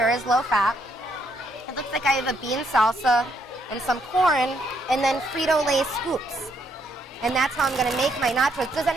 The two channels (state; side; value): normal; both; correlation 0.73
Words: is low fat. It looks like I have a bean salsa and some corn, and then Frito-Lay scoops. And that's how I'm going to make my nachos. Does